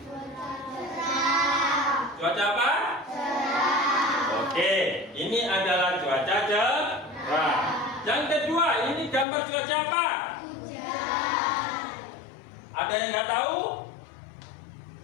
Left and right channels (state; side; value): drops out; right; at 9.2 s